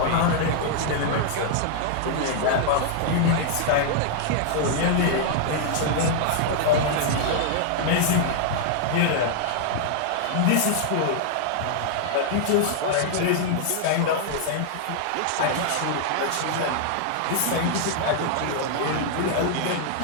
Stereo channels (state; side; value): different; both; correlation -0.01